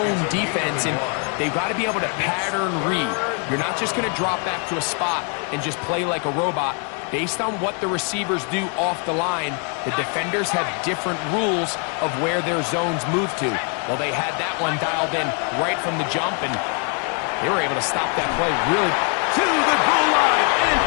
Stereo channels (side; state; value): right; quieter; 38.3 dB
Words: defense, and they've got to be able to pattern read. You're not just going to drop back to a spot and just play like a robot. Based on what the receivers do off the line, the defenders have different rules of where their zones move to. Well, they had that one dialed in right from the jump, and they were able to stop that play really. To the goal line and